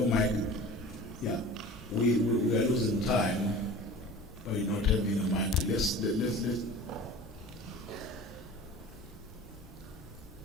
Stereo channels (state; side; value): normal; both; correlation 0.40